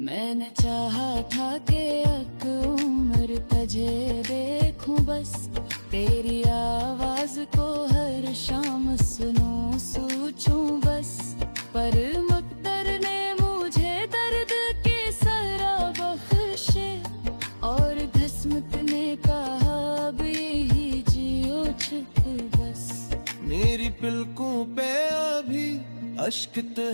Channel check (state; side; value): inverted; both; correlation -1.00